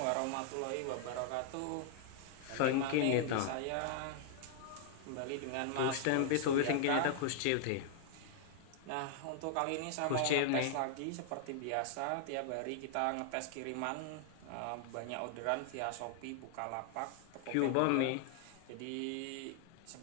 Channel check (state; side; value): different; both; correlation -0.01